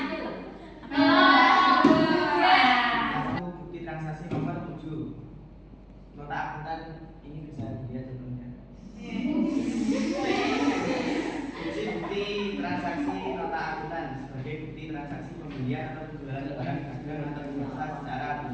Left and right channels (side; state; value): both; identical; correlation 1.00